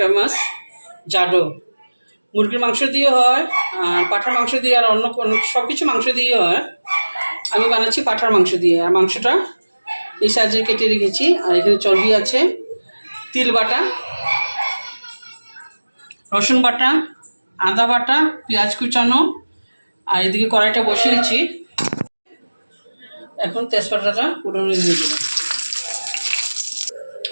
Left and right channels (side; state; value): both; inverted; correlation -1.00